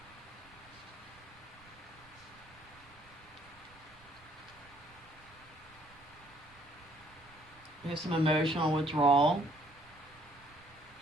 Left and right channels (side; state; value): right; noise; rumble, 25 dB below the sound